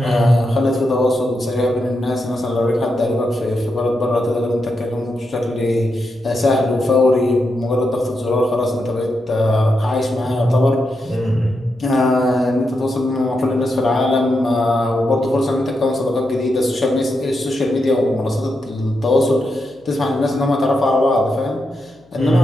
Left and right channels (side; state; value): left; noise; hum, 29 dB below the sound